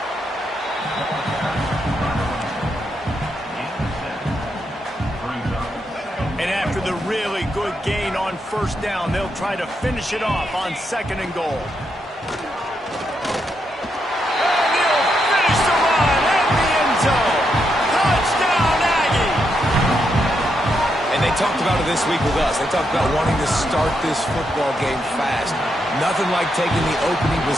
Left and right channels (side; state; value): both; normal; correlation 0.81